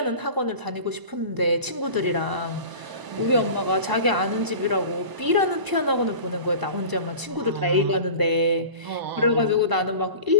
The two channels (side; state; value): left; late; 1.0 ms